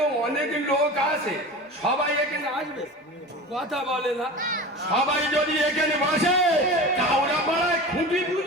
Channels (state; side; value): normal; both; correlation 0.33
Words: অনেক লোক আছে, সবাই এখানে আসবে, কথা বলে না। সবাই যদি এখানে বসে, কাউরা পাড়ায় খুঁটি